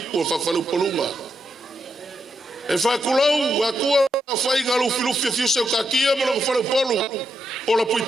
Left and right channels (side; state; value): both; normal; correlation 0.82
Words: whafalu polunga. E whakulau, wakua whai nga lufi fiuseu kakia mo lo whafalu polu. Ola